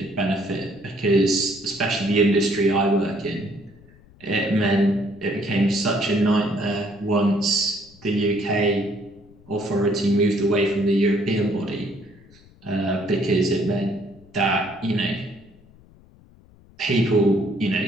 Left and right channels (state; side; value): noise; left; rumble, 26 dB below the sound